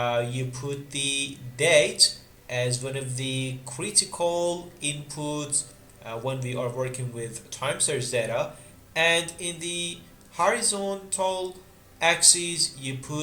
you put the date as one of the critical inputs when we are working with time series data, and in the horizontal axis you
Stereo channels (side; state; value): both; identical; correlation 1.00